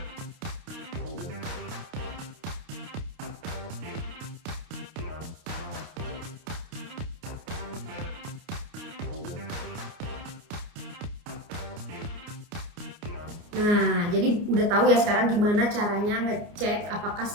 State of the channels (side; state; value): left; late; 29 ms